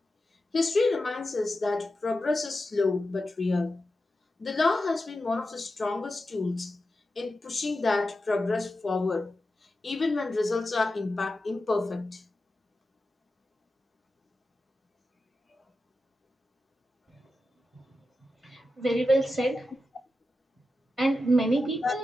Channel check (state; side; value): normal; both; correlation 0.91